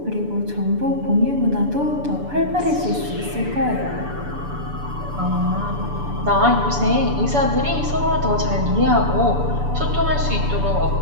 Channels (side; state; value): left; late; 6.9 ms